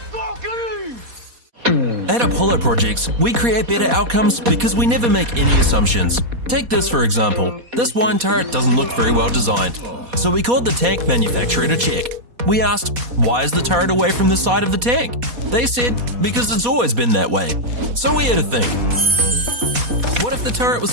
At Apollo Projects, we create better outcomes because we never make any assumptions. Take this for example. This wine turret doesn't look very well designed. So we called the tank manufacturer to check. We asked, why is the turret away from the side of the tank? They said, because it's always been that way. So we had to think. What if the turret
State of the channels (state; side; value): late; left; 4.2 ms